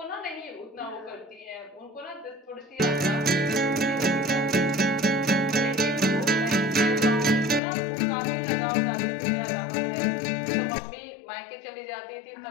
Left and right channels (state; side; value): drops out; right; at 7.6 s